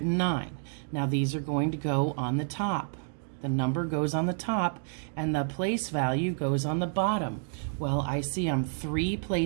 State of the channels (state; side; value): silent; left; digital silence